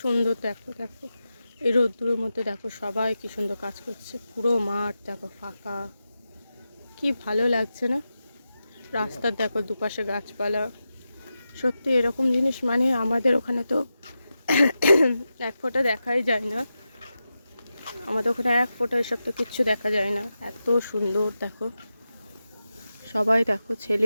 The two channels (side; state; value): both; inverted; correlation -0.91